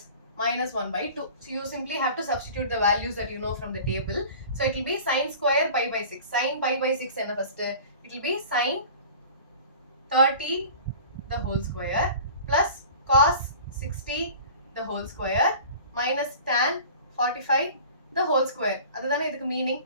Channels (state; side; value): inverted; both; correlation -0.42